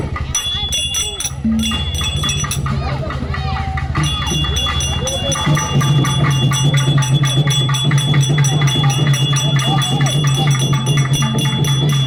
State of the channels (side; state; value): both; identical; correlation 1.00